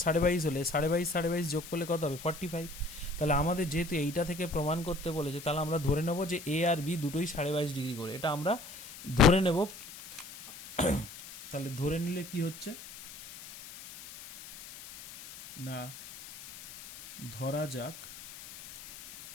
22.5 হলে 22.5 যোগ করলে কত হবে 45। তাহলে আমাদের যেহেতু এইটা থেকে প্রমাণ করতে বলেছে, তাহলে আমরা ধরে নেব যে এ আর বি দুটোই 22.5 ডিগ্রি করে, এটা আমরা ধরে নেব। তাহলে ধরে নিলে কি হচ্ছে না, ধরা যাক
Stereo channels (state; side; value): noise; left; hiss, 15 dB below the sound